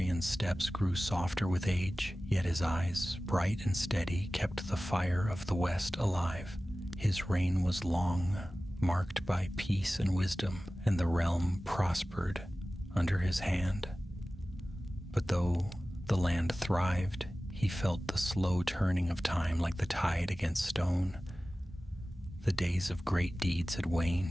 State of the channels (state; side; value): normal; both; correlation 0.96